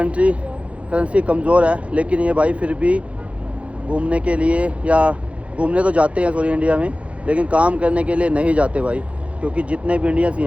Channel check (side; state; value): left; late; 0.063 ms